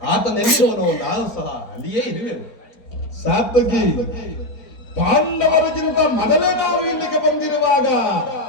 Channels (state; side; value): late; right; 4.4 ms